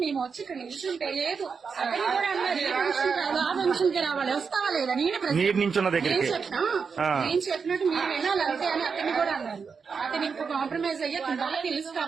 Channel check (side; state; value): left; quieter; 5.6 dB